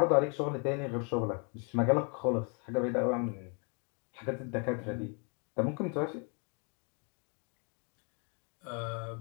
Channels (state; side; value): quieter; right; 36.2 dB